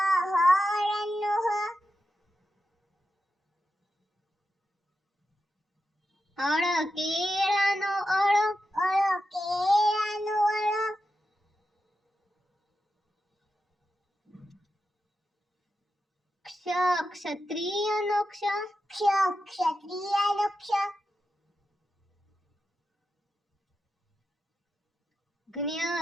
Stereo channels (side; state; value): both; normal; correlation 0.89